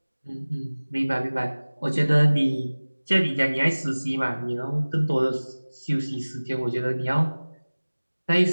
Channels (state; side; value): inverted; both; correlation -1.00